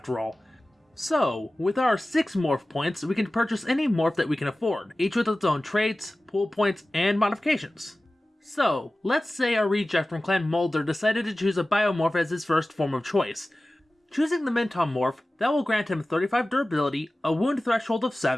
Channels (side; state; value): both; normal; correlation 0.96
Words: all. So, with our 6 morph points, we can purchase any morph that we can afford, each with its own traits, pool points, and modifications. So, let's say our reject from Clan Mulder decided to choose a biomorph as his first form of choice. Choosing the Mintom morph, that will grant him 35 durability, a wound threshold of